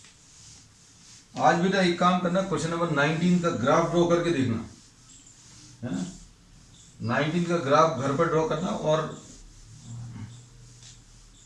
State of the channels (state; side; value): identical; both; correlation 1.00